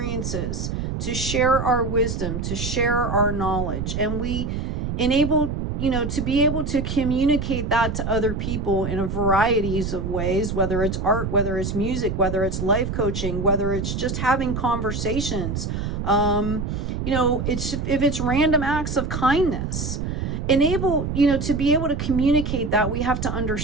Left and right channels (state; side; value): noise; right; rumble, 3 dB below the sound